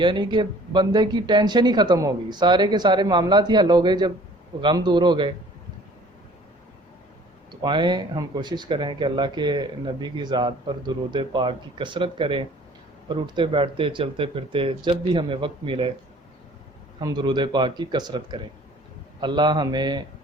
کہ بندے کی ٹینشن ہی ختم ہوگی، سارے کے سارے معاملات ہی حل ہو گئے جب غم دور ہو گئے۔ تو آئیں ہم کوشش کریں کہ اللہ کے نبی کی ذات پر درود پاک کی کثرت کریں، اور اٹھتے بیٹھتے چلتے پھرتے جب بھی ہمیں وقت ملے ہم درود پاک کی کثرت کریں۔ اللہ ہمیں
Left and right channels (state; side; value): normal; both; correlation 0.52